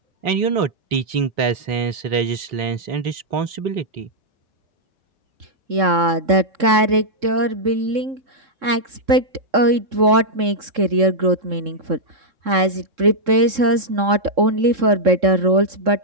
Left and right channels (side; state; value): left; late; 3.7 ms